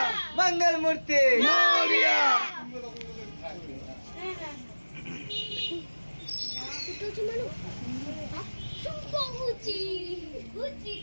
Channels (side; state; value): both; inverted; correlation -1.00